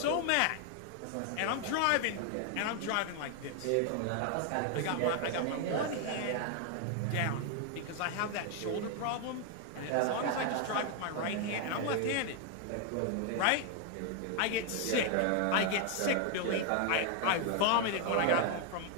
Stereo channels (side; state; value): both; different; correlation 0.00